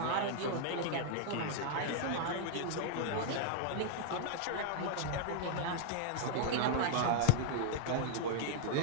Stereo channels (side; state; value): both; different; correlation -0.01